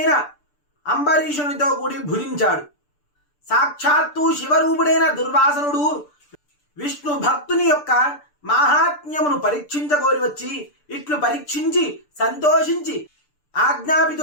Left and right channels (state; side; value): late; right; 6.8 ms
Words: అంబరీషునితో కూడి భుజించాడు. సాక్షాత్తు శివరూపుడైన దుర్వాసనుడు విష్ణు భక్తుని యొక్క మాహాత్మ్యమును పరీక్షించగోరి వచ్చి ఇట్లు పరీక్షించి సంతోషించి